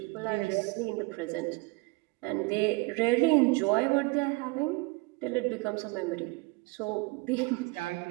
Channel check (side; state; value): left; quieter; 25.4 dB